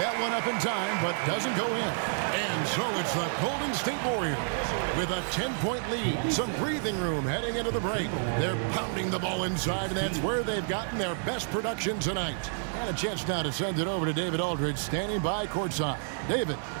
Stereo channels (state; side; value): silent; left; 58 dB below the other